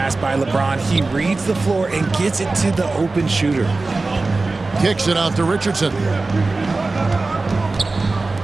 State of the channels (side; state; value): left; quieter; 3.5 dB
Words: by LeBron. He reads the floor and gets it to the open shooter. Kicks it out to Richardson.